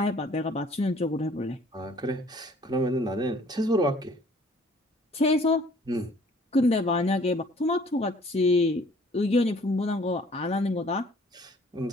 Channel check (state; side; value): normal; both; correlation 0.56